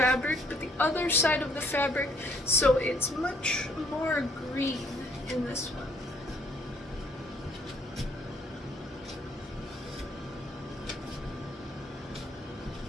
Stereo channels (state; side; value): normal; both; correlation 0.65